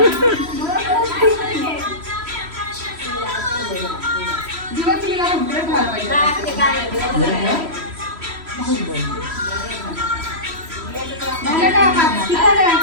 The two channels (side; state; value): left; late; 3.1 ms